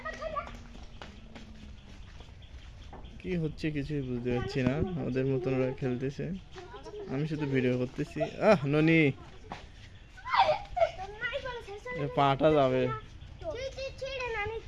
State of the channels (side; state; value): both; identical; correlation 1.00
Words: কি হচ্ছে কিছুই বুঝতে পারছি না ওদের মতন ওরা খেলতেছে আমি শুধু ভিডিও করতেছি ননি পাটা যাবে